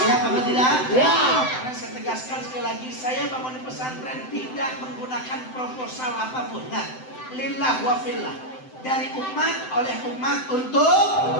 Siap apa tidak? Ya. Karena saya tegaskan sekali lagi, saya bangun pesantren tidak menggunakan proposal apapun. Nah, lillah wa fillah. Dari umat, oleh umat, untuk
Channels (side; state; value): right; late; 7.8 ms